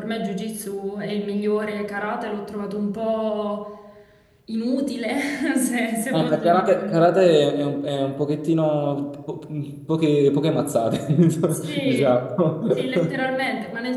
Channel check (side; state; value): both; identical; correlation 1.00